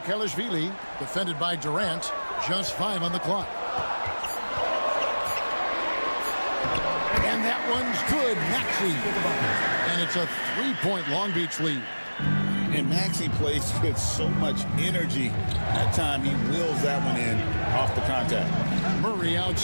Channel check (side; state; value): both; inverted; correlation -1.00